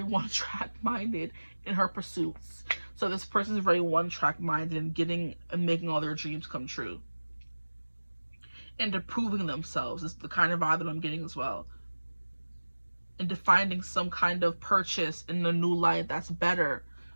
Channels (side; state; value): both; inverted; correlation -1.00